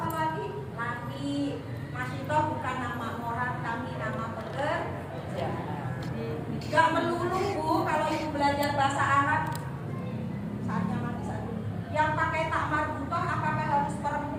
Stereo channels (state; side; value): identical; both; correlation 1.00